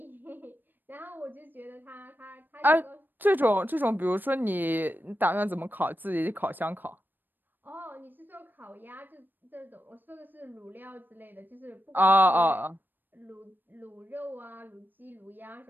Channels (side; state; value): left; late; 0.092 ms